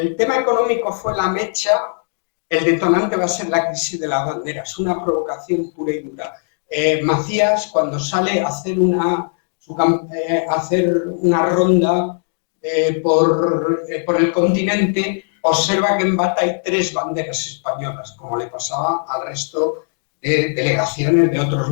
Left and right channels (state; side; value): silent; right; 67 dB below the other